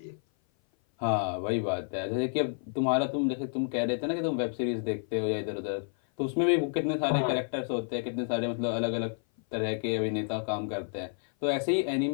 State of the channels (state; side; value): silent; right; 56 dB below the other